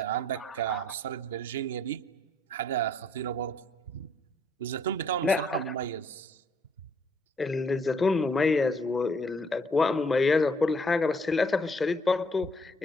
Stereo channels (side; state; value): both; normal; correlation 0.66